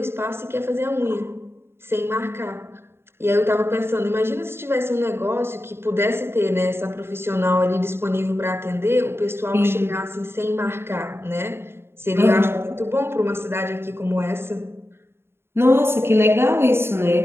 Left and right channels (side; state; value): left; late; 0.12 ms